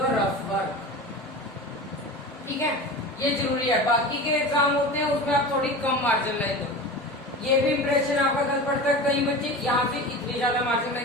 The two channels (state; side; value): normal; both; correlation 0.31